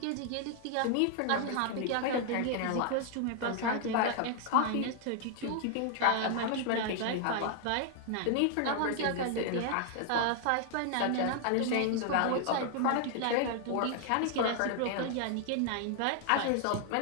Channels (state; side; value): different; both; correlation 0.00